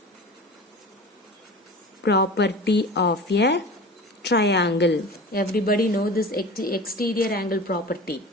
property of a triangle. Everybody know this exterior angle property.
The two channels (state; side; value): normal; both; correlation 0.35